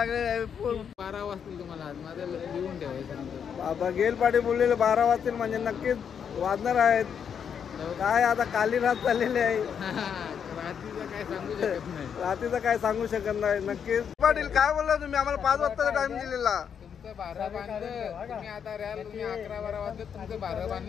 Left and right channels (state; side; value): quieter; right; 7.6 dB